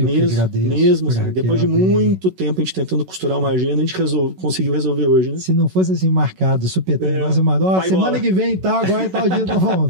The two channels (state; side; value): late; left; 11 ms